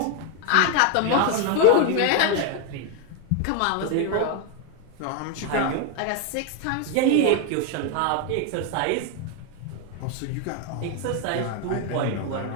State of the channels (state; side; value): different; both; correlation 0.01